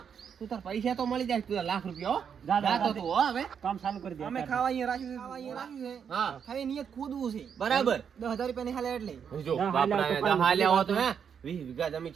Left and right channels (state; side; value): quieter; left; 7.4 dB